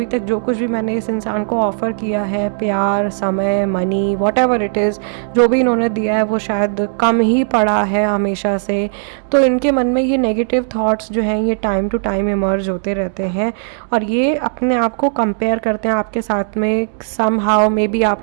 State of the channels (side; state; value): left; silent; digital silence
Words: तक जो कुछ भी मैंने इस इंसान को ऑफ़र किया है, प्यार, समय, मनी, व्हाटएवर इट इज़, जो भी इन्होंने दिया है वो शायद कम ही पड़ा है हमेशा से। तो इनके मन में ये नेगेटिव थॉट्स जो हैं ये टाइम टू टाइम इमर्ज होते रहते हैं, और ये अपने आप को कंपेयर करते हैं आपके साथ में। सम हाउ मे बी